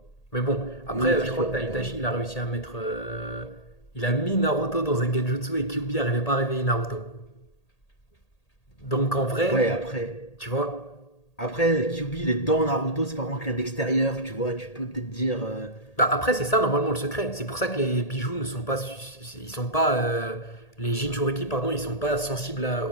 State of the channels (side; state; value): right; late; 1.8 ms